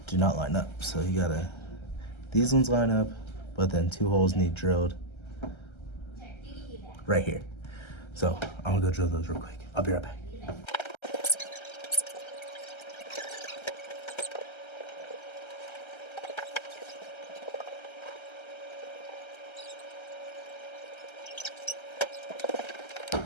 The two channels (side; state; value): right; late; 1.3 ms